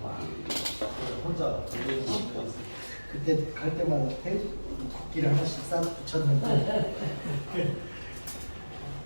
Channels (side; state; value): both; inverted; correlation -1.00